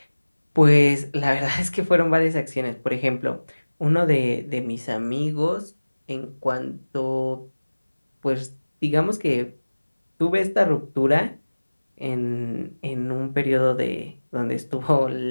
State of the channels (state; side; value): inverted; both; correlation -1.00